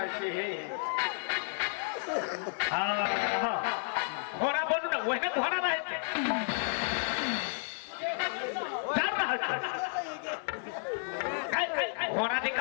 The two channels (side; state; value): right; silent; 56 dB below the other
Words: छे हे हाँ घोड़ा बोलू ना वही घोड़ा रहे थे डर रहा था घोड़ा की